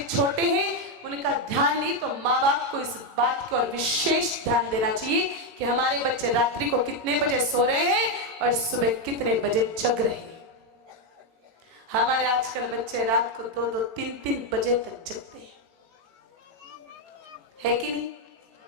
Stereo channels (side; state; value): left; late; 18 ms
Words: छोटे हैं, उनका ध्यान नहीं तो माँ बाप को इस बात की और विशेष ध्यान देना चाहिए कि हमारे बच्चे रात्रि को कितने बजे सो रहे हैं और सुबह कितने बजे जग रहे हैं। हमारे आजकल बच्चे रात को 2-2, 3-3 बजे तक जगते हैं, है कि नहीं?